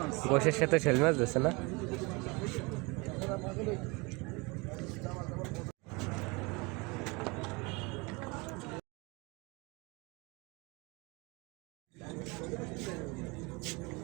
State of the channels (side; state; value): left; quieter; 27.0 dB